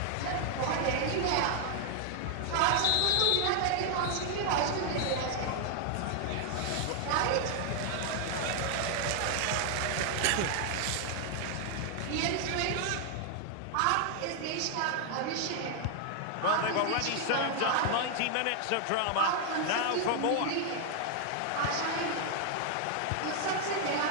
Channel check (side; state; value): both; different; correlation 0.00